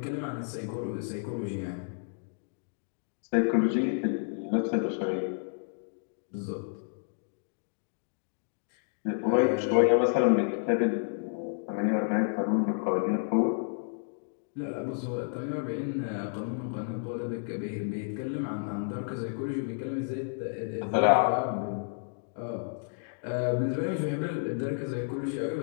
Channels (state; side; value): silent; right; digital silence